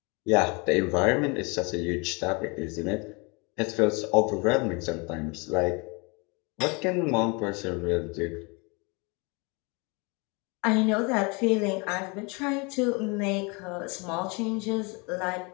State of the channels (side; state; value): right; quieter; 29.9 dB